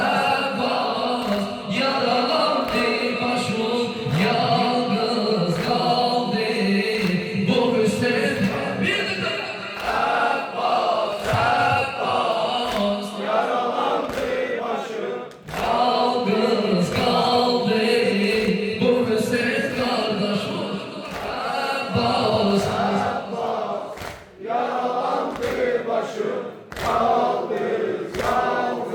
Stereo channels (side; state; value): both; identical; correlation 1.00